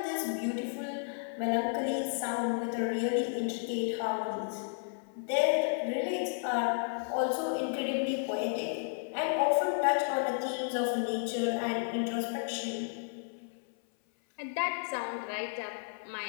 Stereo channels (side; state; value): right; silent; 56 dB below the other